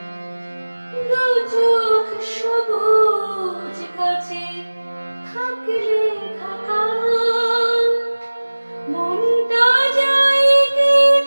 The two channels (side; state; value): both; inverted; correlation -1.00